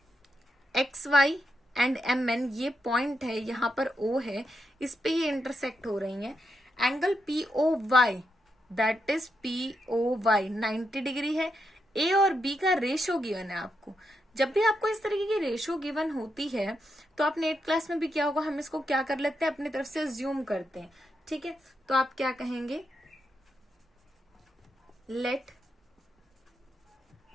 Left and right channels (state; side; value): normal; both; correlation 0.83